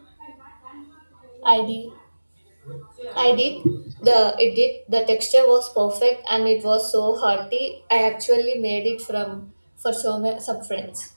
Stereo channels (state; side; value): inverted; both; correlation -1.00